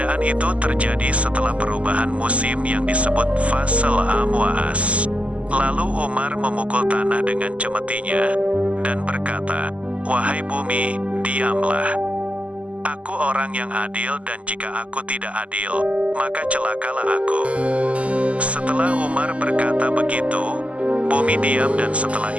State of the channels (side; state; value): left; late; 0.064 ms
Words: itu terjadi setelah perubahan musim yang disebut fasal amwaas. Lalu Umar memukul tanah dengan cemetinya, dan berkata, "Wahai bumi, diamlah. Aku orang yang adil dan jika aku tidak adil, maka celakalah aku." Setelah Umar berkata begitu, bumi diam dan setelah